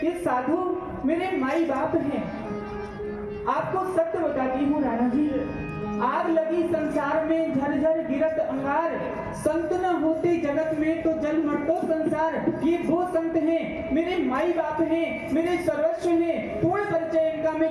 ये साधु मेरे माई बाप हैं। आपको सत्य बताती हूँ राणा जी, आग लगी संसार में झरझर गिरत अंगार, संत न होते जगत में तो जल मरतो संसार। ये वो संत हैं, मेरे माई बाप हैं, मेरे सर्वस्व हैं। पूर्ण परिचय इनका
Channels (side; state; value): both; identical; correlation 1.00